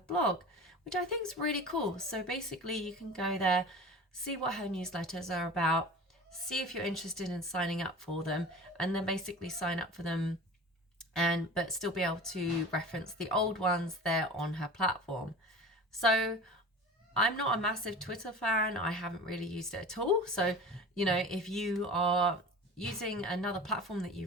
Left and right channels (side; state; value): both; normal; correlation 0.36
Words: blog, which I think is really cool. So basically you can go there, see what her newsletters are about, see if you're interested in signing up for them, and then basically sign up for them but still be able to reference the old ones there on her platform. So I'm not a massive Twitter fan. I haven't really used it at all. So, if you are using another platform that